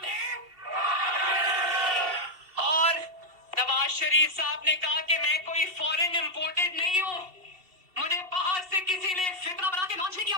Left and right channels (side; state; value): left; late; 2.7 ms